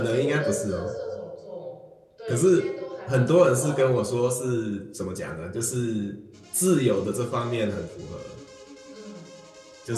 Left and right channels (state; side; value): identical; both; correlation 1.00